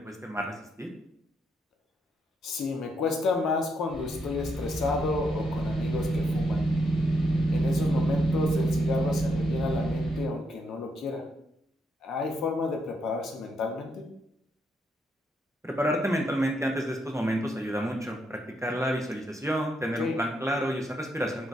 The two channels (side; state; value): both; normal; correlation 0.78